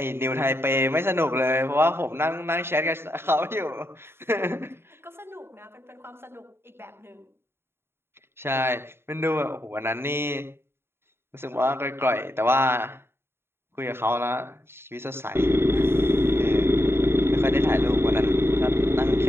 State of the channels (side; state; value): left; late; 0.11 ms